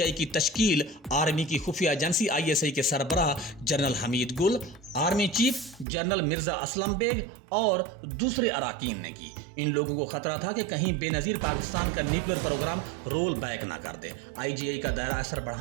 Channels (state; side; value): drops out; left; at 5.9 s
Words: की तश्कील आर्मी की खुफिया एजेंसी आईएसआई के सरबराह general Hamid Gul, army chief general Mirza Aslam Beg और दूसरे अराकीन ने की। इन लोगों को खतरा था कि कहीं बेनज़ीर पाकिस्तान का न्यूक्लियर प्रोग्राम रोल बैक ना कर दे। आईजीआई का दायरा असर